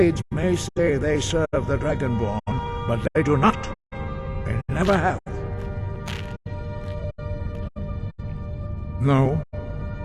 may say they serve the Dragonborn, but they do not. They never have. No,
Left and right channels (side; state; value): both; identical; correlation 1.00